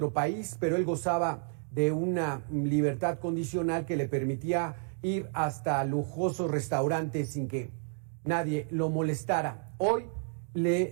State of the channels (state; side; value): silent; left; 57 dB below the other